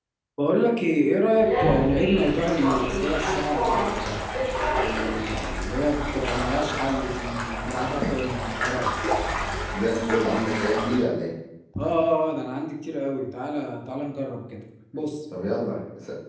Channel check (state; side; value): identical; both; correlation 1.00